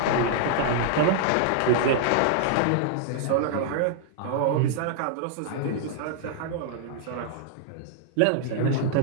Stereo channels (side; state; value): both; different; correlation -0.01